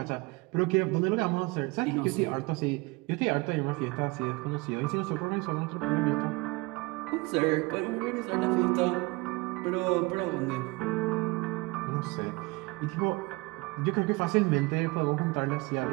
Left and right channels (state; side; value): quieter; left; 24.9 dB